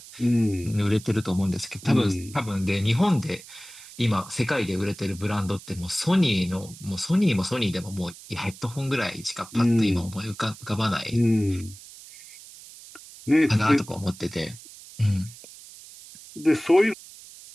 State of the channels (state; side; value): noise; right; hiss, 18 dB below the sound